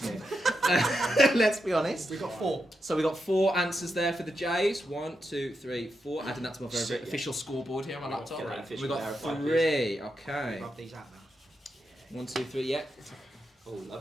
it? Let's be honest. We've got 4. So we got 4 answers there for the Jays. 1, 2, 3, 4. Adding that to my very Sick, yeah. official scoreboard here on my laptop. Get that official We got verified, 3. Okay. Rub these out now. 1, 2, 3. Yeah. Oh,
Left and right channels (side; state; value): both; normal; correlation 0.86